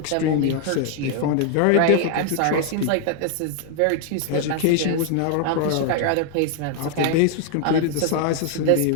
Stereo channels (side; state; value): both; different; correlation 0.00